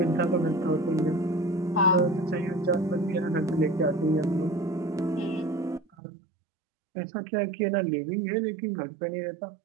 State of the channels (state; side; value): drops out; left; at 5.9 s